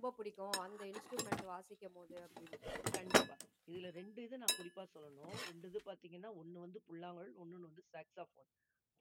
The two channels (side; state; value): both; identical; correlation 1.00